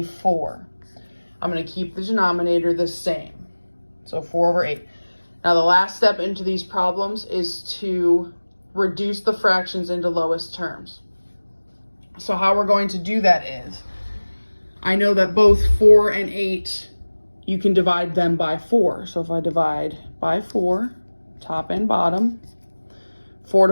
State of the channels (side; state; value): both; inverted; correlation -1.00